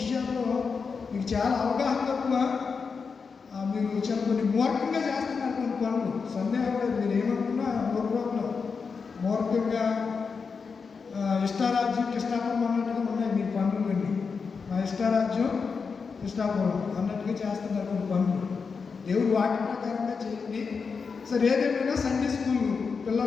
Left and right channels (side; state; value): right; quieter; 5.3 dB